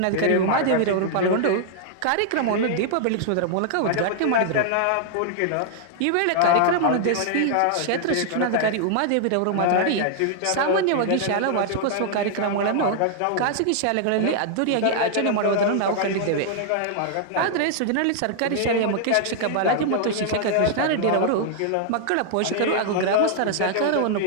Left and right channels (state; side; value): different; both; correlation -0.01